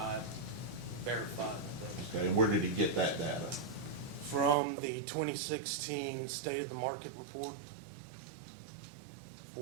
verified those. Okay, and where did he get that data? From the 2016 State of the Market report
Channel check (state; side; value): drops out; left; at 4.5 s